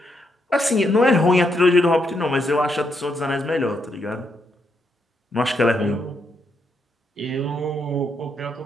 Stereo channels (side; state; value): both; normal; correlation 0.78